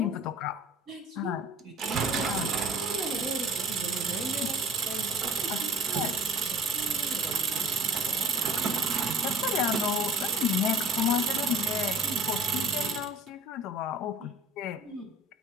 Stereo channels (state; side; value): normal; both; correlation 0.45